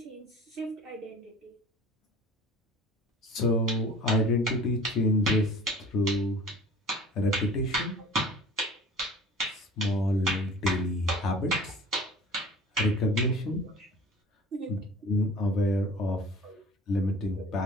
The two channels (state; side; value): normal; both; correlation 0.44